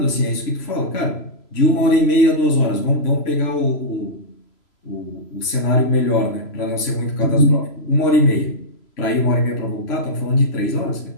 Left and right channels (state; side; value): late; right; 3.0 ms